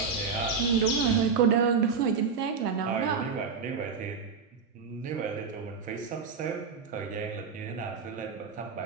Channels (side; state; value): left; quieter; 5.5 dB